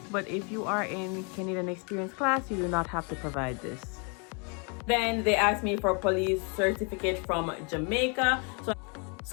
but if you are in Canadian Experience class, you do not have to provide this. Then they asked me for police certificate from Jamaica. So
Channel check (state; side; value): quieter; right; 35.3 dB